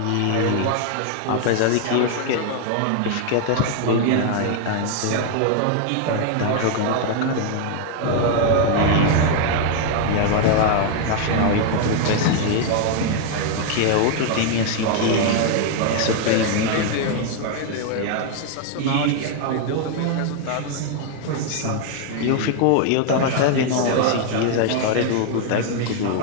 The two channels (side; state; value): both; different; correlation 0.00